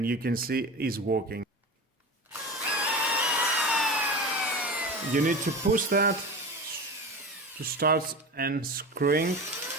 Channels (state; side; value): normal; both; correlation 0.29